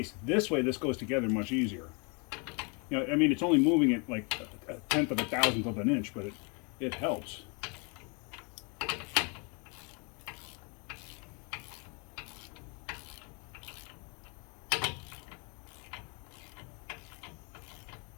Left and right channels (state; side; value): quieter; right; 33.5 dB